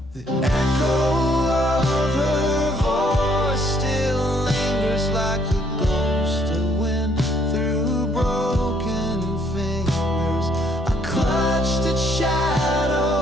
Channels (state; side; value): normal; both; correlation 0.67